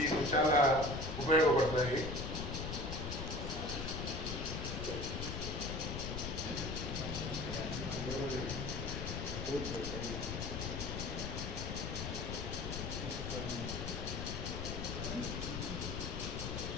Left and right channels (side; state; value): left; noise; rumble, 4 dB below the sound